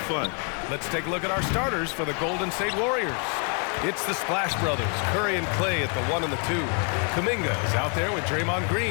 fun. Let's take a look at our starters for the Golden State Warriors. It's the Splash Brothers, Curry and Clay at the 1 and the 2. Kuminga is out there with Draymond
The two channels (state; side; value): quieter; right; 39.7 dB